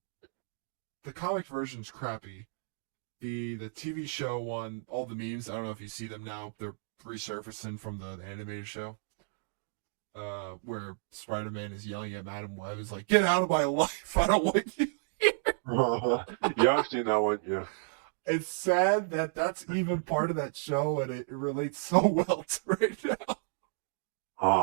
the comic version's crappy. The TV show one, all the memes. I don't know if you see them now. They're resurfacing from the animated show. Where Spider-Man is yelling at Madam Web, is like, "Get out of my life! I don't want you." Yeah, I've seen that one. Yeah. It's sad that that's even part of that show, and it relates so well to right now.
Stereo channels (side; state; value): left; silent; digital silence